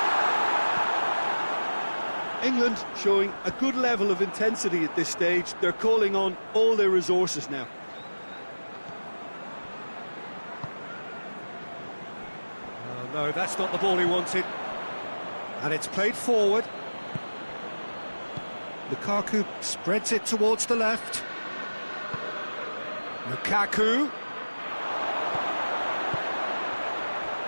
England showing a good level of intensity at this stage. They're calling on all their resources now. Oh, no, that's not the ball he wanted. And it's played forward. Lukaku spreads it towards the left. Lukaku.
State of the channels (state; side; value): inverted; both; correlation -1.00